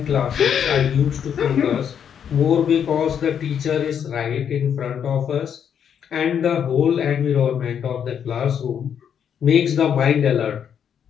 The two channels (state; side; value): quieter; right; 8.3 dB